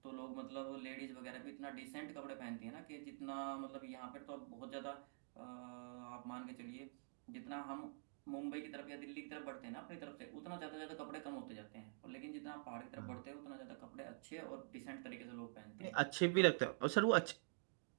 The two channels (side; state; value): left; silent; digital silence